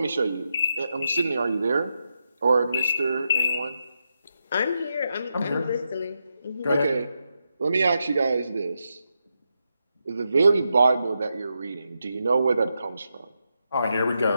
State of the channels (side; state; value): both; inverted; correlation -0.85